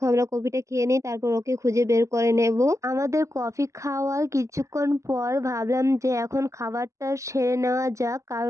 আমরা কফিটা খেয়ে নিই, তারপর ওকে খুঁজে বের করে নেব। আমাদের কফি খাওয়ার কিছুক্ষণ পর ভাবলাম যে এখন খাবারটা সেরে নেওয়া যাক,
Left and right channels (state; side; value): late; left; 0.15 ms